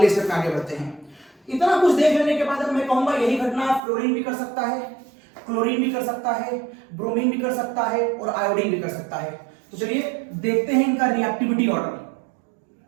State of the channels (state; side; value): drops out; left; at 3.8 s